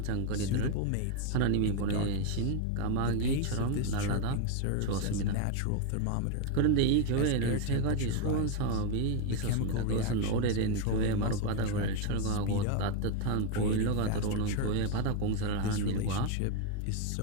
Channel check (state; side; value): different; both; correlation 0.01